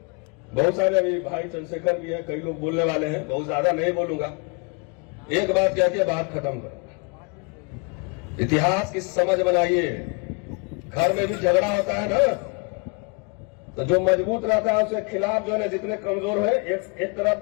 बहुत सारे अभी भाई चंद्रशेखर भी है, कई लोग बोलने वाले हैं, बहुत ज्यादा नहीं बोलूंगा। एक बात कह के बात खत्म करूंगा। इतिहास की समझ बनाइए। घर में भी झगड़ा होता है ना, तो जो मजबूत रहता है उसके खिलाफ जो है जितने कमजोर है एक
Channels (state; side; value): quieter; right; 32.8 dB